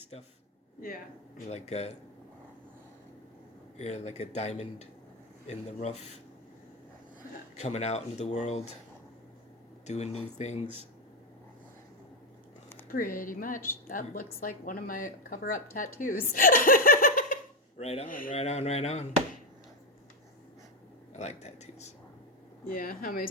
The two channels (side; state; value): both; normal; correlation 0.08